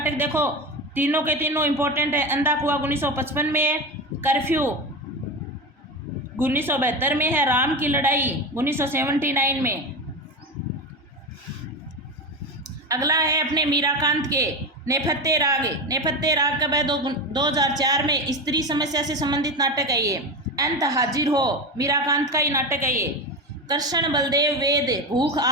देखो, तीनों के तीनों इंपॉर्टेंट है। अंधा कुआं 1955 में, कर्फ्यू 1972 में है, राम की लड़ाई 1979 में। अगला है अपने मीराकांत के नेपथ्य राग। नेपथ्य राग कब है? 2004 में। स्त्री समस्या से संबंधित नाटक है ये। अंत हाजिर हो मीराकांत का ही नाटक है ये। कृष्ण बलदेव वेद भूख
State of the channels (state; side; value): normal; both; correlation 0.21